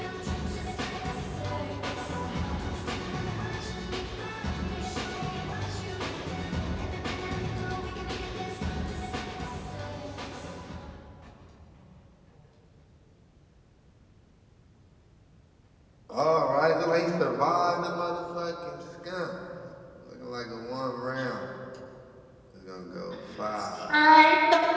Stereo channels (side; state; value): both; identical; correlation 1.00